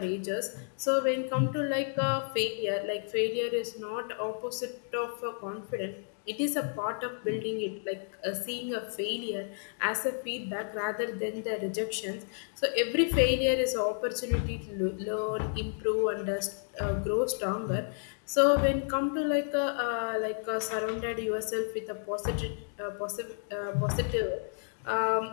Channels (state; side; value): silent; right; 57 dB below the other